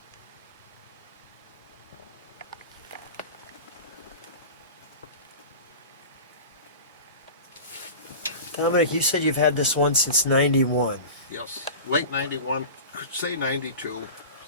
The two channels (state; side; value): inverted; both; correlation -0.33